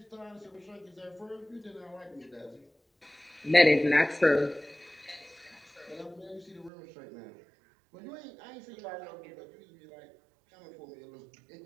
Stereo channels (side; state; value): left; drops out; at 6.7 s